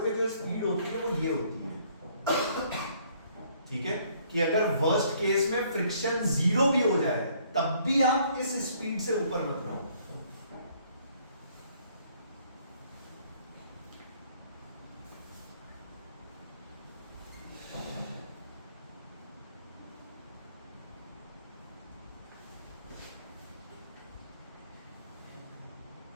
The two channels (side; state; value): both; inverted; correlation -0.63